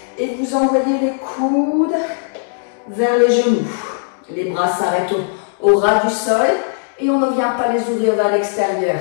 et vous envoyez les coudes vers les genoux. Les bras s'arrêtent au ras du sol et on ne vient pas les ouvrir vers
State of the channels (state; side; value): silent; right; digital silence